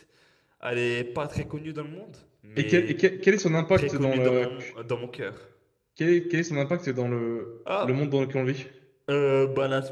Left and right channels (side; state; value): both; identical; correlation 1.00